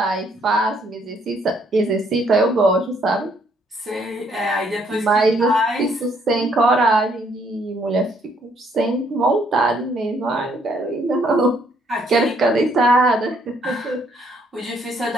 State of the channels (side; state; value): both; normal; correlation 0.68